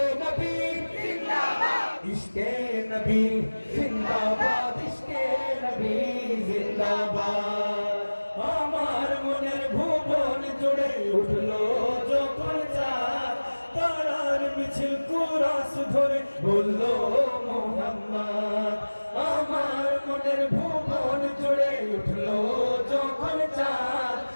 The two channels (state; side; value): inverted; both; correlation -1.00